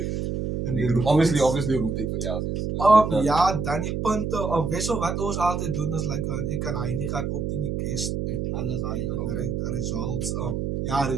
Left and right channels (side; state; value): right; noise; hum, 2 dB below the sound